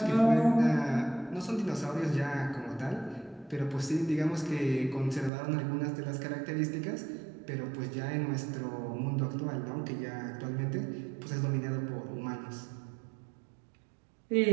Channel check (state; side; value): drops out; left; at 5.3 s